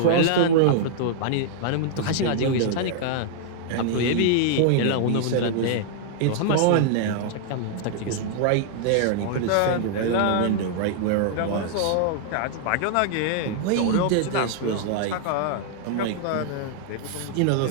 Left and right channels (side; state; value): both; different; correlation -0.01